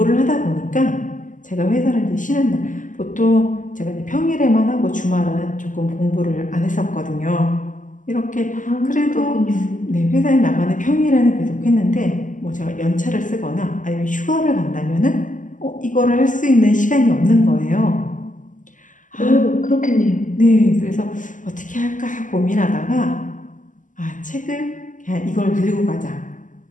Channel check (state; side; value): late; right; 0.37 ms